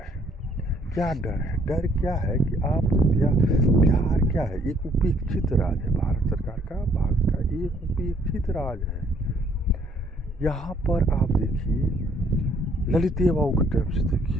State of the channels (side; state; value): both; normal; correlation 0.64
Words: है। क्या डर है? डर क्या है कि आप बिहार क्या है, एक उपेक्षित राज्य है भारत सरकार का, भारत का एक उपेक्षित राज्य है। यहाँ पर आप देखिए, ललित बाबू के टाइम से